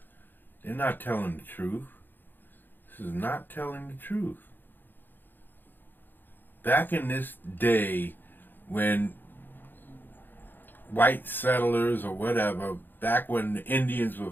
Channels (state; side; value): late; right; 0.093 ms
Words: They're not telling the truth. This is not telling the truth. Back in this day, when white settlers or whatever, back when the Indians were